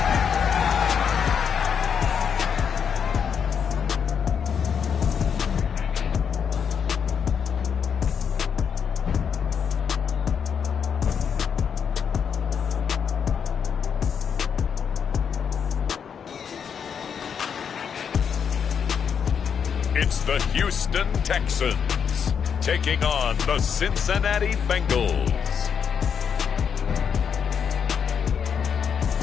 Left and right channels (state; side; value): quieter; right; 7.2 dB